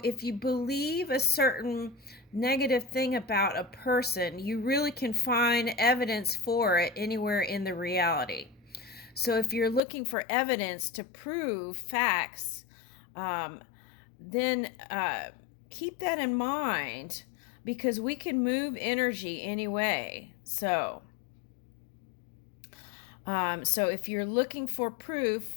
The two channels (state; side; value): drops out; right; at 9.8 s